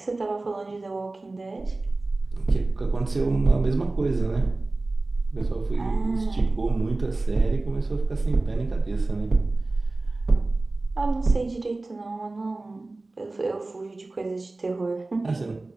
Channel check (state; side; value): quieter; left; 3.2 dB